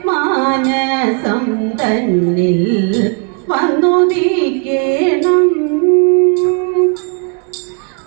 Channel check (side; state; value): left; quieter; 39.2 dB